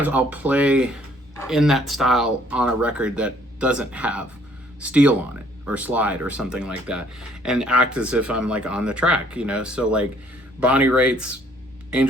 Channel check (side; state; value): both; normal; correlation 0.61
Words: I'll play in that style on a record that doesn't have steel on it or slide or something like that, and act as if I'm like on the track, So like Bonnie Raitt's